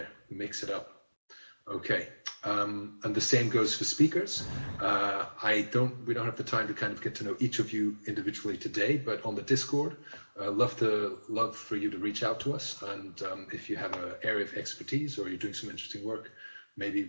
mix it up. Okay, and the same goes for speakers. We don't have the time to kind of get to know each of you individually today, but on the Discord, love for you to reach out to us. And if you have an area of expertise or you're doing some interesting work, maybe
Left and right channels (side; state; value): both; inverted; correlation -1.00